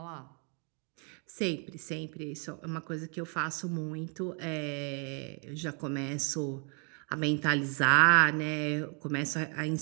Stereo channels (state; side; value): quieter; left; 39.4 dB